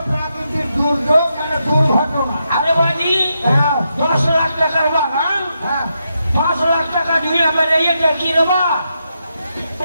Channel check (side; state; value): both; inverted; correlation -0.83